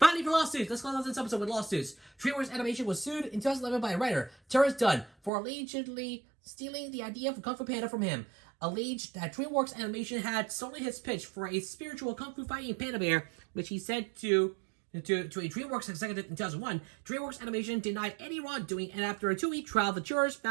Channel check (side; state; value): left; drops out; at 5.3 s